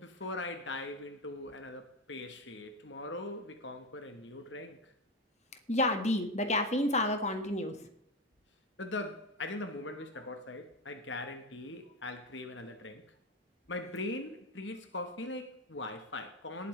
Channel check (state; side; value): normal; both; correlation 0.15